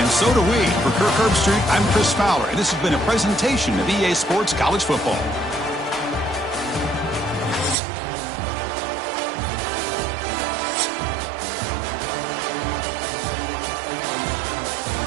so do we. For Kirk Herbstreit, I'm Chris Fowler. And this has been a presentation of EA Sports College Football.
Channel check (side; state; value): left; drops out; at 7.8 s